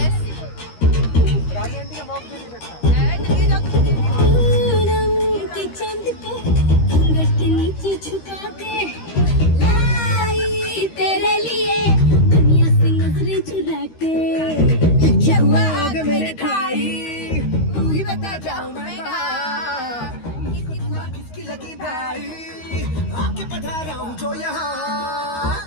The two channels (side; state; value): right; late; 13 ms